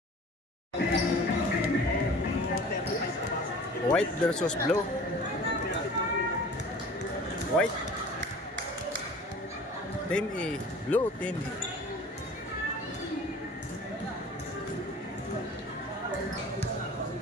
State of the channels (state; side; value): normal; both; correlation 0.44